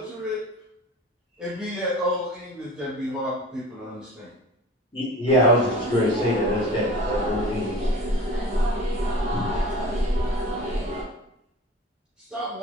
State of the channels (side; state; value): both; normal; correlation 0.39